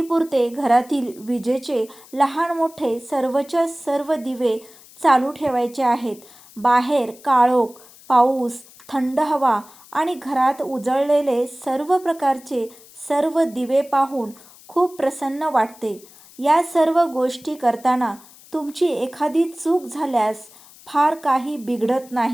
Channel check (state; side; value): noise; left; hiss, 23 dB below the sound